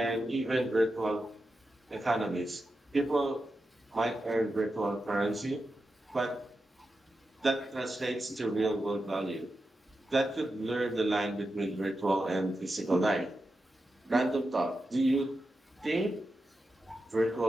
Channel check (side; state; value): both; normal; correlation 0.89